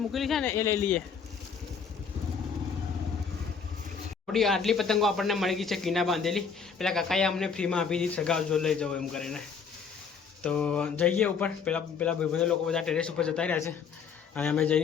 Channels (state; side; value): quieter; right; 6.1 dB